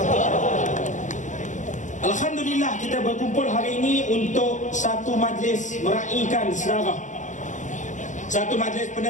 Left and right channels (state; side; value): late; right; 0.36 ms